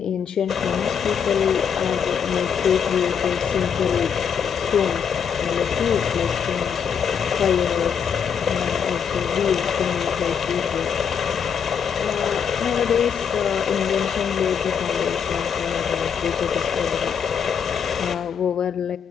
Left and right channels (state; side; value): quieter; right; 7.3 dB